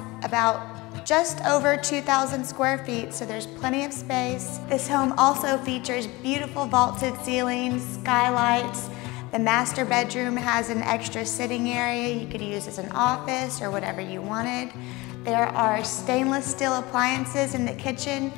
about just over 2,000 square feet, so there's plenty of space. This home also features beautiful vaulted ceilings, skylights. The master bedroom has an extra sitting area you could use as an office or whatever you wanted. There are stainless steel appliances in the kitchen.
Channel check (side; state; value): right; quieter; 22.5 dB